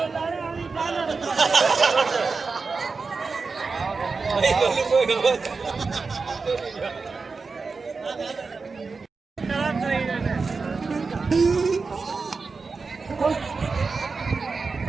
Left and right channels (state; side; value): quieter; left; 4.4 dB